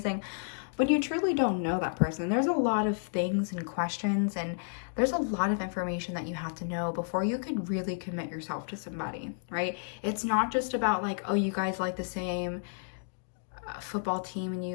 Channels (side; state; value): right; silent; digital silence